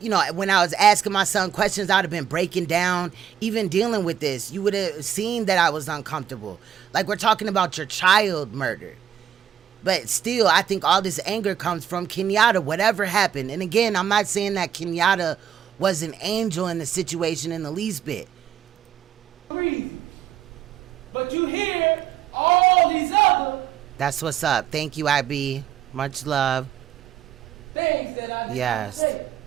know, when I was asking my son questions, I'd have been breaking down, even dealing with this. You would have seen that I was uncomfortable. Like, we're talking about your child murdered. But still, I think all this anger comes from Kenyatta, whatever happened. And again, I'm not saying that Kenyatta was an angel in the situation in the least bit. But you hear all these other That's what's up. Thank you, IB. Much love. things that I Yes. say.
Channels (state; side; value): quieter; left; 9.4 dB